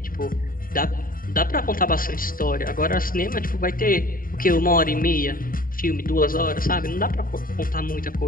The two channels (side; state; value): right; late; 0.41 ms